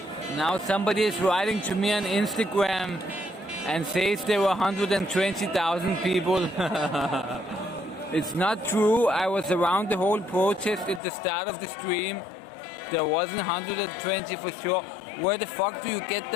Now somebody is writing to me on Instagram and says there were 120,000 people. It's not true. I was around the whole protest at the start of the stream. There wasn't 120 for sure. Where the fuck do you get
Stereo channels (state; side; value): drops out; right; at 11.0 s